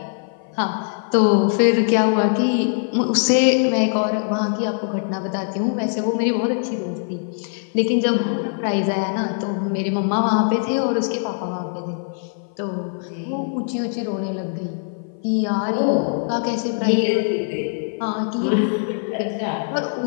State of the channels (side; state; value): right; silent; 56 dB below the other